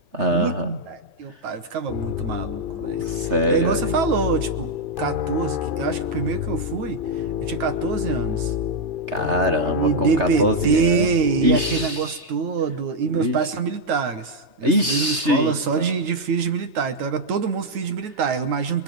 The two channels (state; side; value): late; left; 3.3 ms